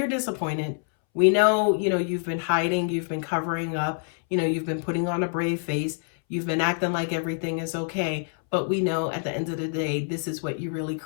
disappointed. We know, you've been hiding, you've been covering up, you've been putting on a brave face, you've been acting like everything is okay, but we know at the end of the day, this is what you really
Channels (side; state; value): right; silent; 61 dB below the other